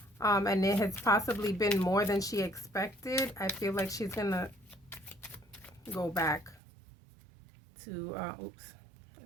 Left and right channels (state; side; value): drops out; left; at 6.6 s